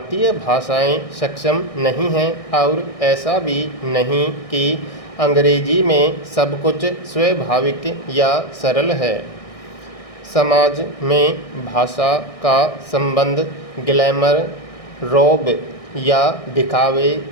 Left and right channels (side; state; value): right; late; 1.6 ms